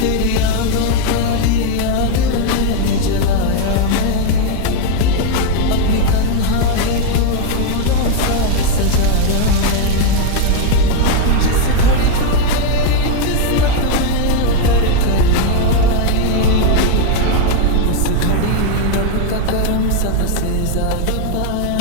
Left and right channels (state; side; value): different; both; correlation 0.01